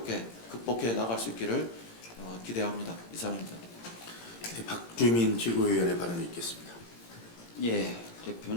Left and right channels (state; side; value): late; right; 17 ms